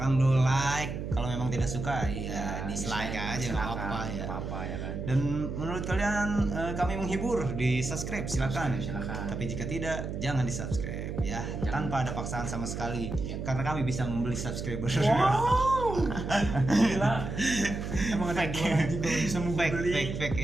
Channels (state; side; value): noise; right; hum, 5 dB below the sound